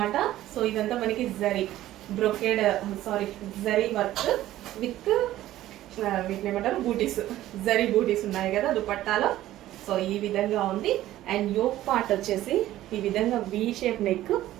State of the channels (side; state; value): left; quieter; 14.3 dB